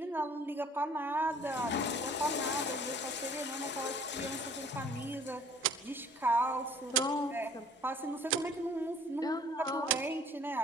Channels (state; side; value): normal; both; correlation 0.54